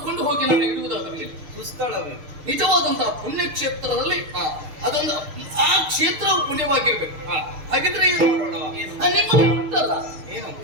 ಕೊಂಡು ಹೋಗಿ ನಾನು ಇಡುವುದಾದ್ರೆ ಸುಸ್ಥಳವೇ ನಿಜವಾದಂತಹ ಪುಣ್ಯಕ್ಷೇತ್ರದಲ್ಲಿ ಅದೊಂದು ಆ ಕ್ಷೇತ್ರವು ಪುಣ್ಯವಾಗಿರ್ಬೇಕು. ಹಾಗಿದ್ರೆ ಏನು ಮಾಡೋಣ? ನಿಮ್ಮಲ್ಲಿ ಉಂಟಲ್ಲ ಏನು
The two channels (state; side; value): late; left; 6.6 ms